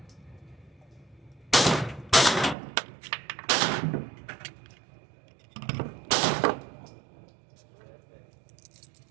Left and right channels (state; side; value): drops out; left; at 2.6 s